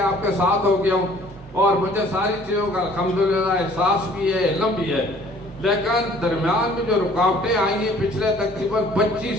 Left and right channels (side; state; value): both; normal; correlation 0.55